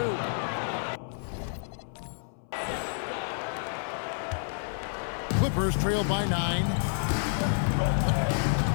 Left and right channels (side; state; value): right; silent; 58 dB below the other